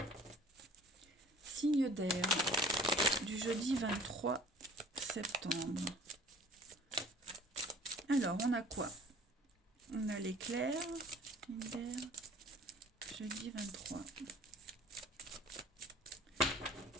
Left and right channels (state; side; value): normal; both; correlation 0.49